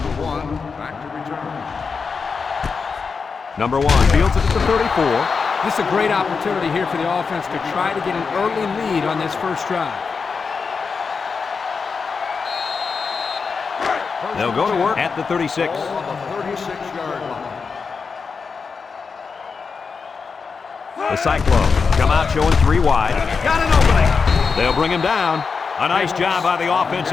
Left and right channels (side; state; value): right; quieter; 5.2 dB